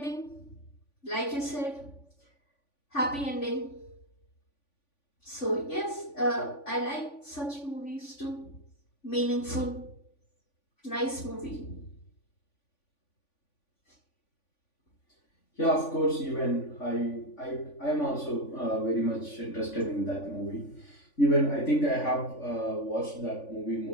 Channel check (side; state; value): right; late; 3.5 ms